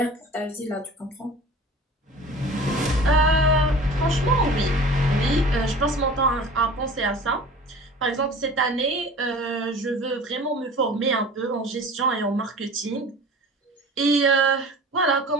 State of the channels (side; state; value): both; normal; correlation 0.41